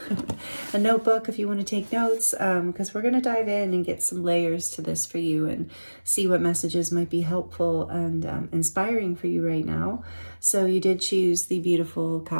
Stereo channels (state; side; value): inverted; both; correlation -1.00